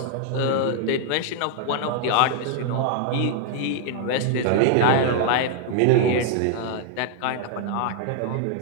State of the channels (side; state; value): both; different; correlation 0.00